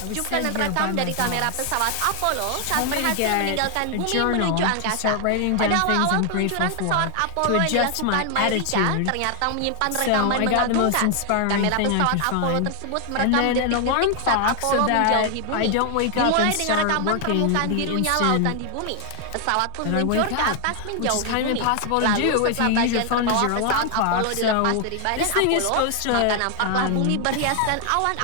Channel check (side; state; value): both; different; correlation 0.00